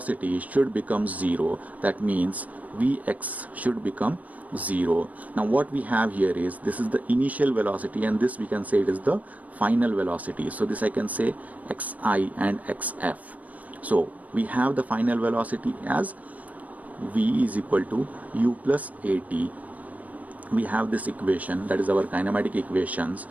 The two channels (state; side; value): late; left; 0.072 ms